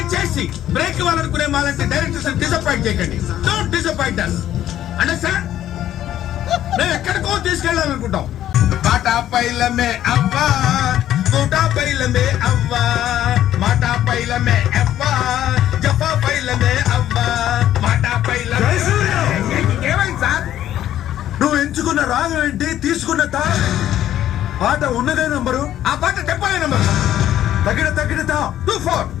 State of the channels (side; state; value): right; quieter; 12.0 dB